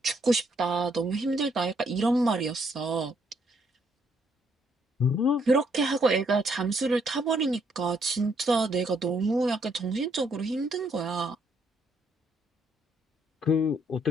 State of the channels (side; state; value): both; normal; correlation 0.71